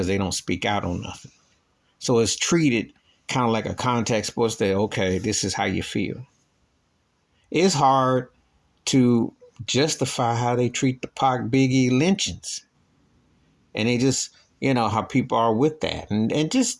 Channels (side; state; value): both; identical; correlation 1.00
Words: they don't speak out on nothing. So it's treated kind of like a contact sports that, okay, this is how you feel. It's hard to justify how they treat the Pac Biggie lynchings. And they just, how people are with that. And